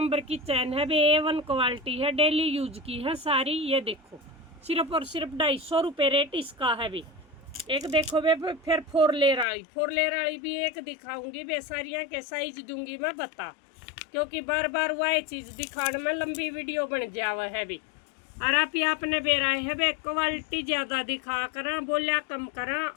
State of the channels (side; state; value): right; drops out; at 9.5 s